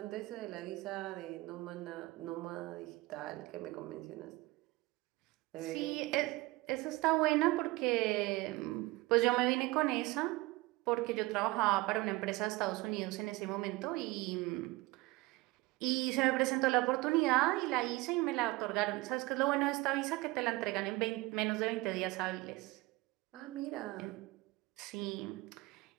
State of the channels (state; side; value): quieter; left; 21.3 dB